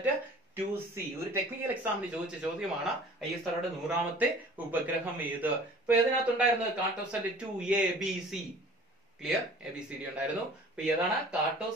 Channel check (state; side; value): normal; both; correlation 0.47